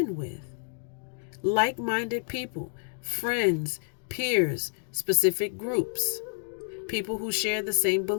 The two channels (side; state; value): right; silent; digital silence